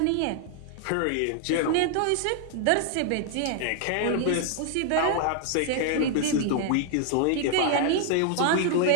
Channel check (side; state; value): both; different; correlation 0.00